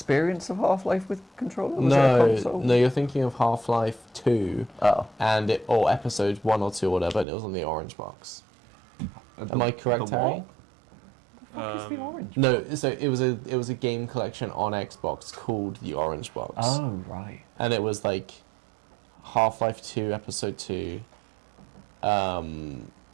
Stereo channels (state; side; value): drops out; left; at 7.2 s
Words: of Half-Life with controller? Was it a console? No, you're thinking of Half-Life 2. Oh. Or episode 1 or 2 or whatever, and it was on the orange box. Am I correct, Harry? What is the orange? No, so it was a game collection on Xbox called the Orange Box. Oh, right. And it was like Half-Life 2, Episode 2,